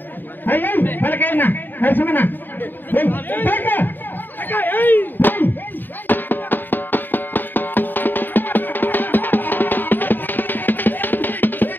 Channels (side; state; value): right; late; 0.092 ms